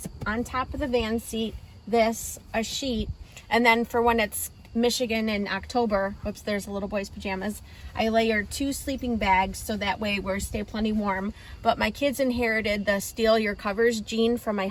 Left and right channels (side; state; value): both; identical; correlation 1.00